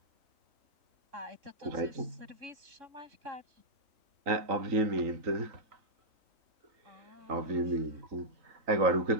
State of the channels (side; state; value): left; late; 3.9 ms